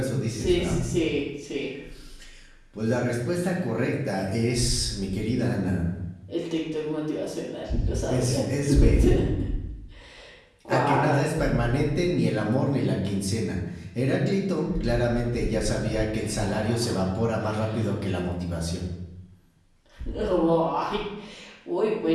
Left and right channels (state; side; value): identical; both; correlation 1.00